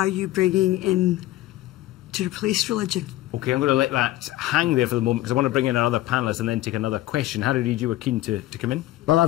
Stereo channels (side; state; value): right; quieter; 15.8 dB